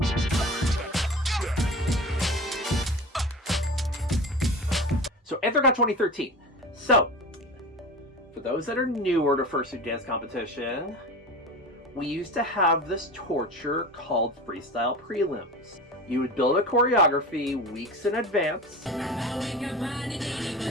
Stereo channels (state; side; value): normal; both; correlation 0.32